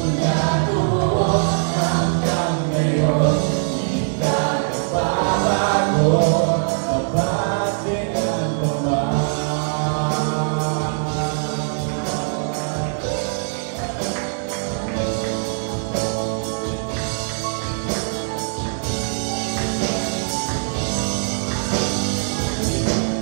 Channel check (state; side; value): silent; left; 60 dB below the other